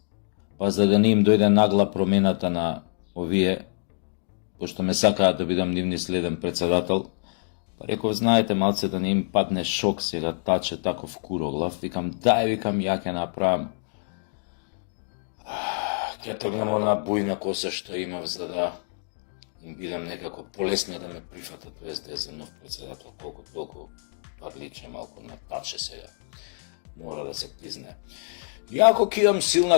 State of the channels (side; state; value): right; silent; digital silence